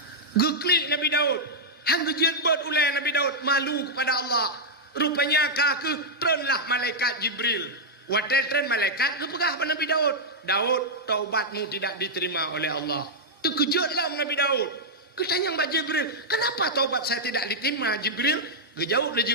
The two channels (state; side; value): normal; both; correlation -0.05